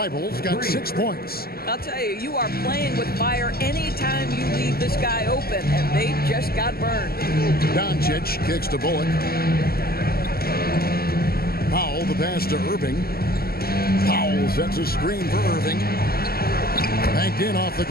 got 6 points. I'll tell you, you are playing with fire anytime you leave this guy open, and they just got burned. Doncic kicks to Bullock. Powell, the pass to Irving. Powell sets a screen for Irving. Banked in off the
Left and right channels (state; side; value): late; right; 0.45 ms